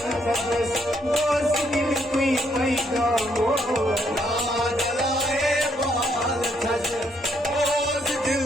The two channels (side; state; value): both; normal; correlation 0.72